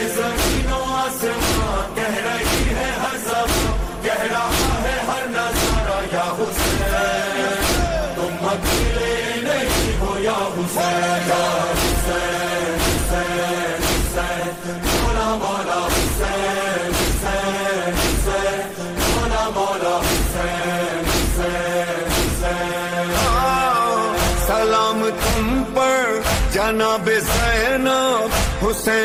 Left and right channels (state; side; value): identical; both; correlation 1.00